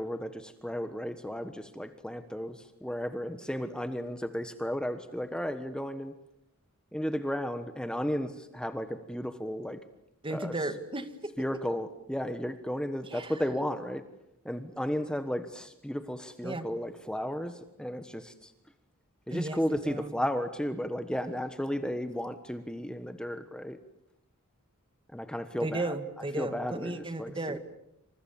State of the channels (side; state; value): both; normal; correlation 0.86